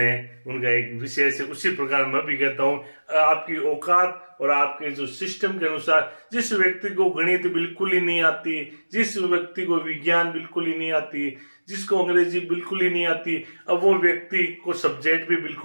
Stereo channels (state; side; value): inverted; both; correlation -1.00